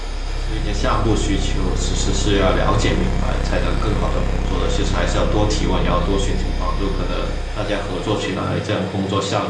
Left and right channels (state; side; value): identical; both; correlation 1.00